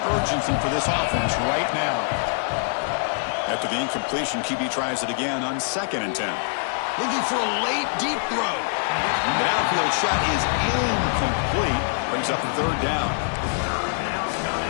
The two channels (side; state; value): right; silent; digital silence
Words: urgency for this offense right now. After the incompletion, QB tries it again on 2nd and 10. Looking for a late, deep throw. The downfield shot is incomplete. Brings up the third down.